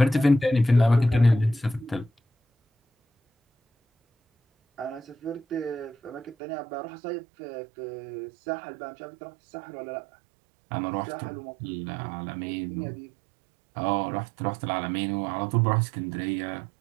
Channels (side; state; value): left; drops out; at 6.4 s